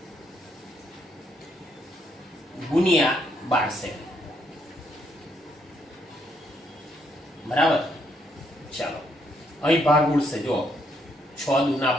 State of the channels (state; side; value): normal; both; correlation 0.74